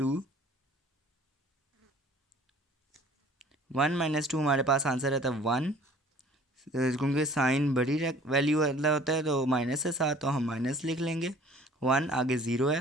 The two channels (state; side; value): normal; both; correlation 0.51